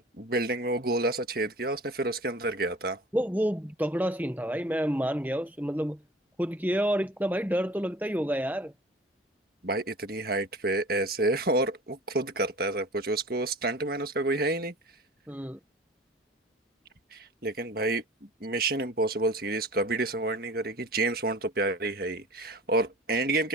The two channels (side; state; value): both; normal; correlation 0.42